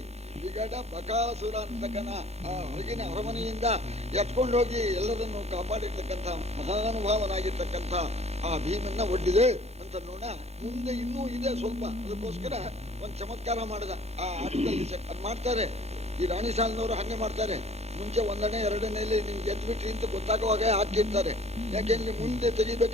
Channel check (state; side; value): late; left; 0.31 ms